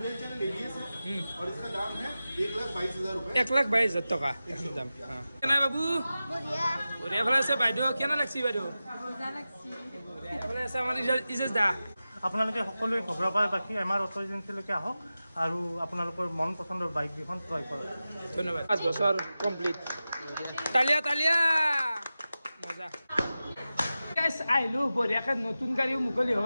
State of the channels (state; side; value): inverted; both; correlation -0.94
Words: चैनल एबीएस है और इसका दाम है 1,22,000 रुपए 1,22,000 টকা এখন দাম কেনা বাবু বঢ়িয়া ভালে আছে বাইদেউ কেনা লাগছি বাইদেউ ভালে আছে আমাৰ ইজেজ দা আপোনালোকে সকলোৱে ঘগ্ৰাপাৰ বাকী আমাৰ অটো এজেঞ্চিলৈকে আহক আৰু আপোনালোকৰ মন পচন্দৰ বাইক দুখন ক্ৰয় কৰক ধন্যবাদ 5 বছৰ কমপ্লিট তালিয়া তালিয়া মজা গাইস আইলো বঢ়িয়াকে নতুন গাড়ীও মুকলি